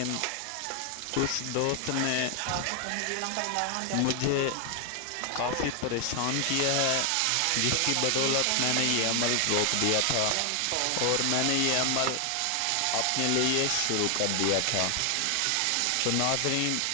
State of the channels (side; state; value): both; different; correlation 0.00